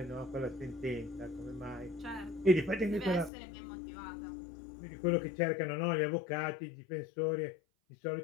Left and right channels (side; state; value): right; drops out; at 3.3 s